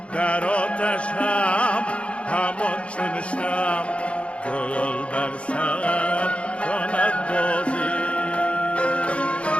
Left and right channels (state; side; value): late; right; 0.060 ms